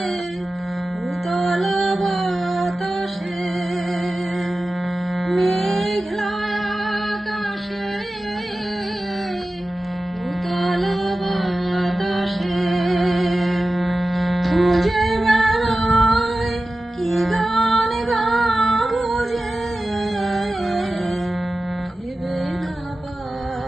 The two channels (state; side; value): normal; both; correlation 0.95